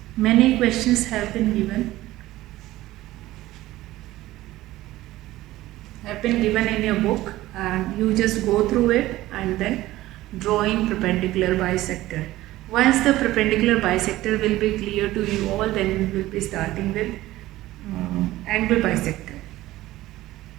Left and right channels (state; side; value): quieter; left; 16.5 dB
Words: Many questions have been given in your book, and you just go through it and then drawing perpendicular bisector. Once the perpendicular bisector will be clear to you all, then we will be starting with angle bisector.